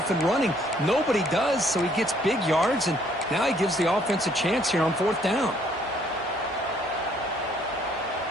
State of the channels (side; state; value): both; normal; correlation 0.64